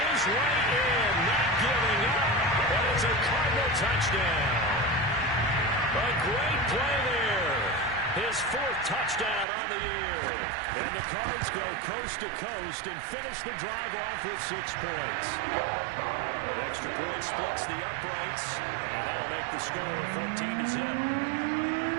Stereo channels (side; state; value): left; drops out; at 9.5 s